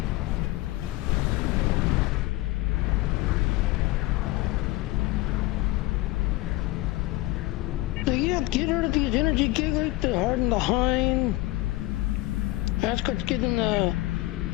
So yeah, get rid of these energy gateways to harden the hind. That's what's getting the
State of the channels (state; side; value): quieter; right; 19.1 dB